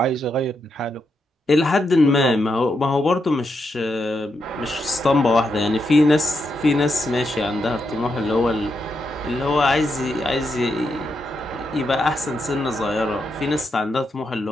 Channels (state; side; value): normal; both; correlation 0.83